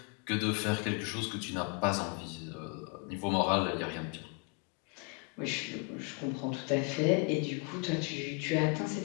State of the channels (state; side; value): quieter; right; 33.3 dB